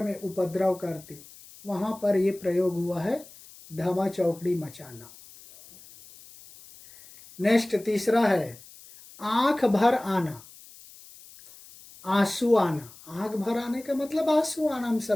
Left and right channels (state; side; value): noise; left; hiss, 21 dB below the sound